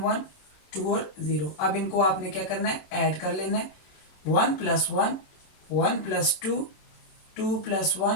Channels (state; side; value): late; right; 26 ms